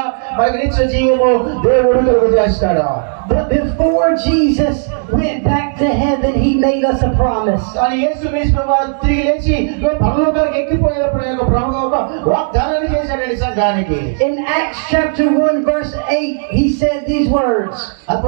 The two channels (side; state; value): left; silent; digital silence